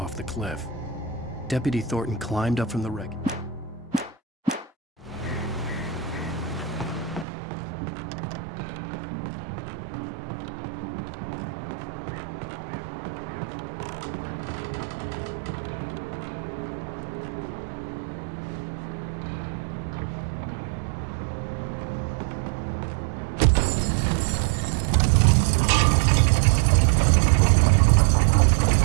the cliff. Deputy Thornton climbed up from the wreck.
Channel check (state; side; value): drops out; left; at 7.2 s